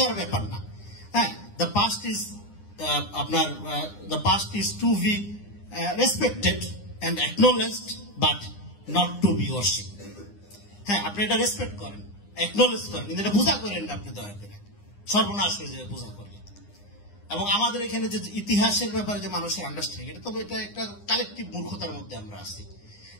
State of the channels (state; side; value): late; right; 9.8 ms